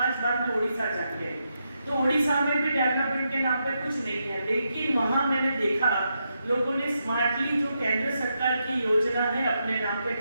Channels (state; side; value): inverted; both; correlation -0.83